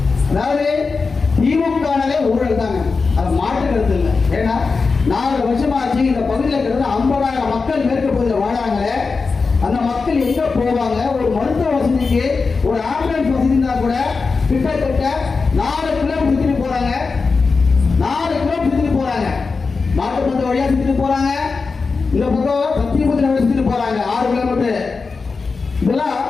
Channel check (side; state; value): right; quieter; 4.5 dB